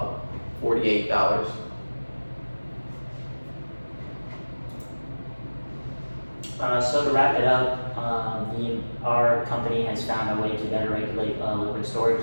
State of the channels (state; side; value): inverted; both; correlation -1.00